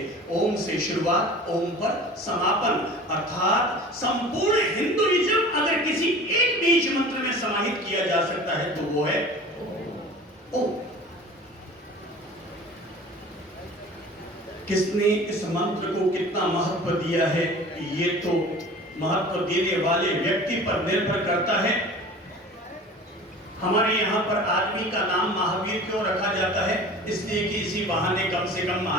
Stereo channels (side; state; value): both; normal; correlation 0.41